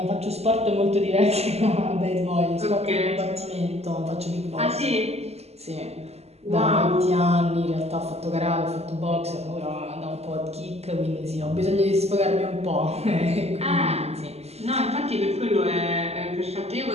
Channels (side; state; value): left; late; 0.30 ms